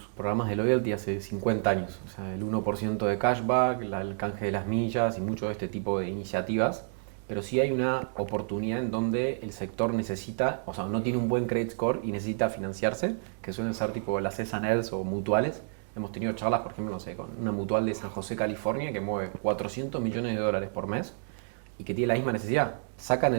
programas de loyalty hace 50 años. O sea, el 1% de cashback, el canje de las millas y mucho de este tipo de iniciativas. Pero sí hay una oportunidad en donde el sector necesita, o sea, no tiene un buen credit score y necesita financiarse, que suelen ser tipo las S&Ls o mutuales. Hemos tenido charlas, por ejemplo, no sé, con una mutual de San José, California, que mueve 400 millones de dólares por mes y que tiene la misma necesidad. Sacan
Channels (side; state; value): left; silent; digital silence